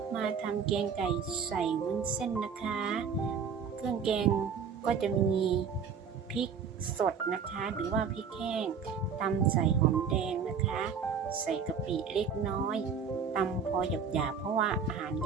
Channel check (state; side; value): quieter; left; 6.4 dB